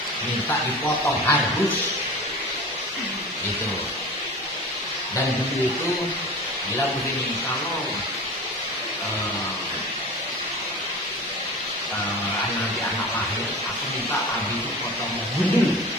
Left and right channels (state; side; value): normal; both; correlation 0.34